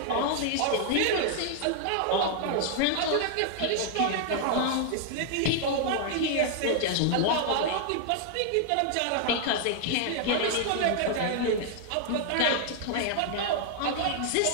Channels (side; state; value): both; different; correlation 0.00